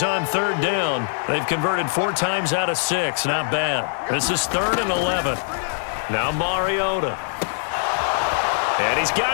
on third down. They've converted 4 times out of 6. Not bad. This is 3rd and 11. Now Mariota. And he's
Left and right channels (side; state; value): right; silent; digital silence